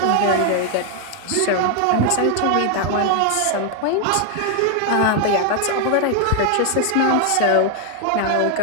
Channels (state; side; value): different; both; correlation 0.00